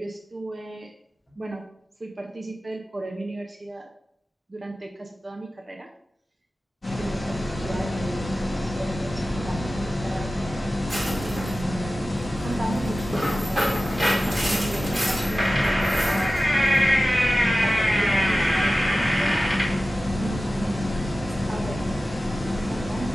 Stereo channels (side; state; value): both; normal; correlation 0.95